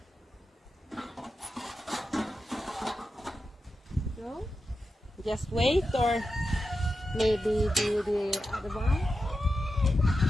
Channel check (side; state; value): both; normal; correlation 0.90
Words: So, just wait, or maybe do the other one.